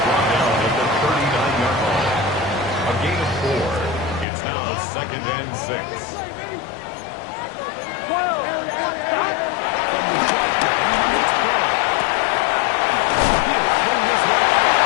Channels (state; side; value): drops out; right; at 4.2 s